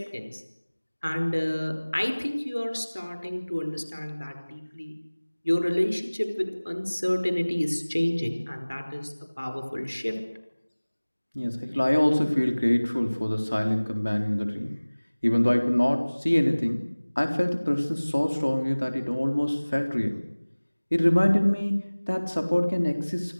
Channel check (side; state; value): both; inverted; correlation -1.00